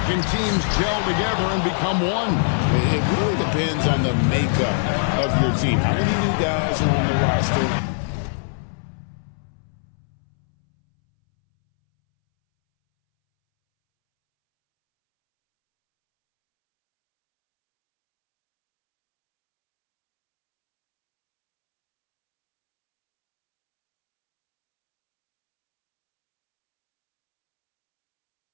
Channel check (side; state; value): right; silent; 64 dB below the other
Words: can teams gel together and become one? It really depends on the makeup of your team. How many new guys are on the roster?